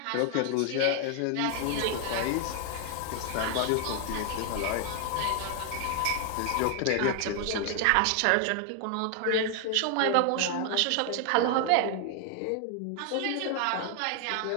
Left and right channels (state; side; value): different; both; correlation 0.00